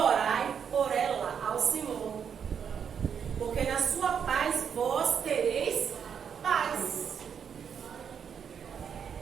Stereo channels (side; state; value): left; quieter; 7.4 dB